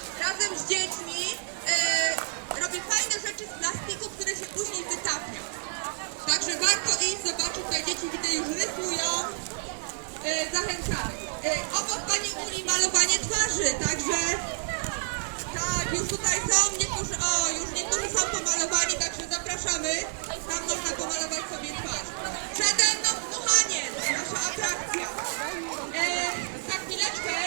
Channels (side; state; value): left; silent; 59 dB below the other